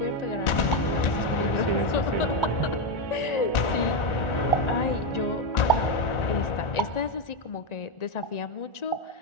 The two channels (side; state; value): right; late; 1.4 ms